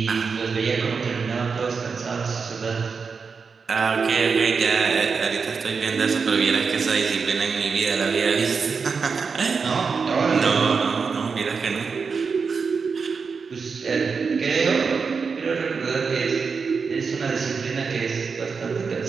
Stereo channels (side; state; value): left; quieter; 5.3 dB